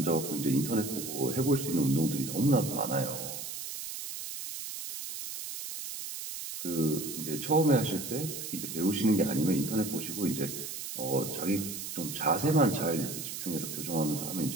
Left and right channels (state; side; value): noise; right; hiss, 7 dB below the sound